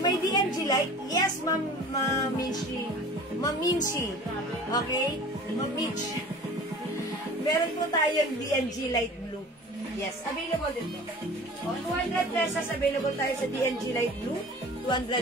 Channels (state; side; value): normal; both; correlation 0.42